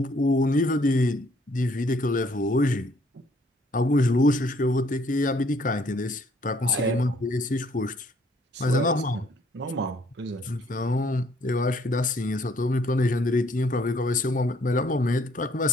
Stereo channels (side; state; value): both; normal; correlation 0.63